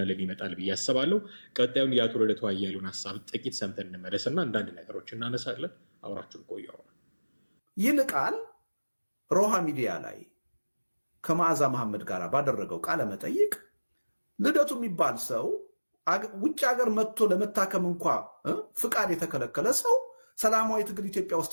ይመጣል ብዬ አስባለሁ። ቀጣዩን የአቶ ልደቱ አያሌውን ሀሳብ ጥቂት ሰምተን እንመለስና አንዳንድ ነገሮች እናነሳለን። አብራችሁን ቆዩ። ይልቃል ሮሃ ሚዲያ ላይ ከመዓዛ መሐመድ ጋር ባደረገው ቃለ መጠይቅ ልደቱ የሚባል ሰው ውጭ ሀገር መጥቶ ለመታከም እንኳ ፍቃድ የተከለከለ ሰው ሰላማዊ ትግል ኢትዮጵያ ውስጥ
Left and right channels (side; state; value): both; inverted; correlation -1.00